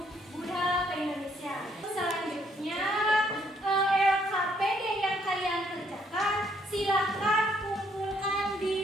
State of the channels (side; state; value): both; normal; correlation 0.69